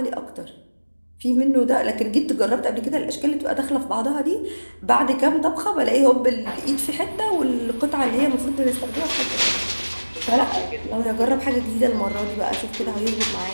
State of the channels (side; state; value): both; inverted; correlation -1.00